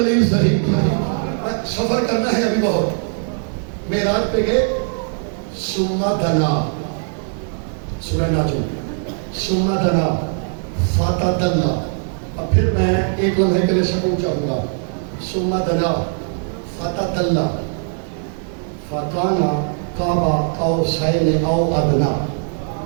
صحیح۔ سفر کرنا ہے ابھی بہت، معراج پہ گئے، ثم دنا، سورہ ناجم، ثم دنا فتدلی، اب پھر میں ایک لمحے کے لیے سکون چاہوں گا، ثم دنا فتدلی فکان قاب قوسین او ادنی۔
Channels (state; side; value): silent; left; 55 dB below the other